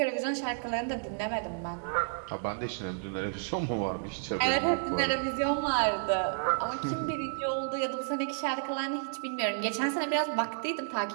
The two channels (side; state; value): left; silent; digital silence